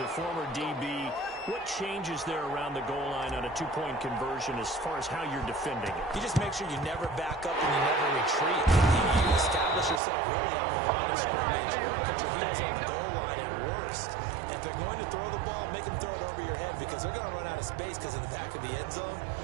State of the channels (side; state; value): left; drops out; at 10.0 s